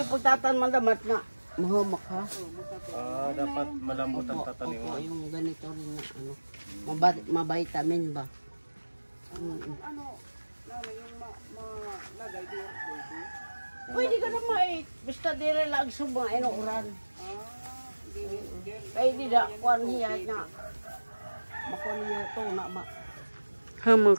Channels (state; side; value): inverted; both; correlation -1.00